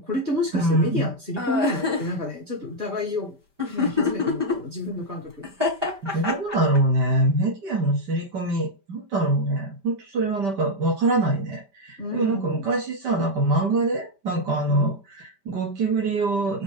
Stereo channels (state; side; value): late; left; 5.1 ms